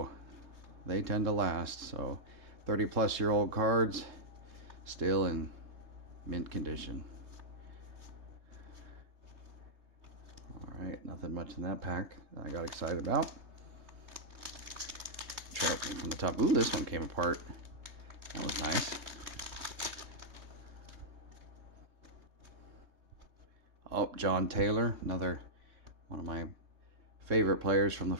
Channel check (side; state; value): left; late; 3.2 ms